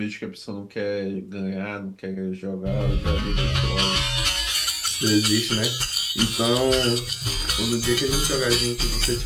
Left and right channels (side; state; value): both; identical; correlation 1.00